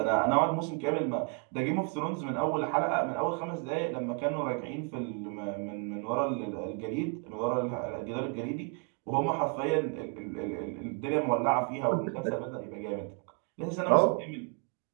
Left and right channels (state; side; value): quieter; left; 36.0 dB